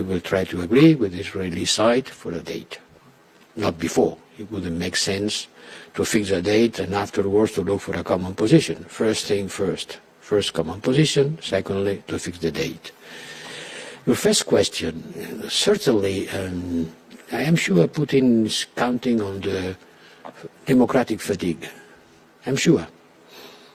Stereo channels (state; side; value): identical; both; correlation 1.00